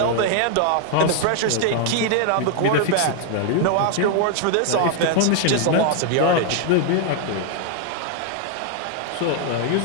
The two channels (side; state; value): both; different; correlation 0.00